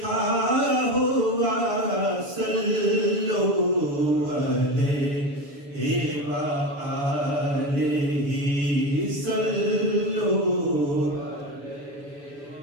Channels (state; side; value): late; left; 7.0 ms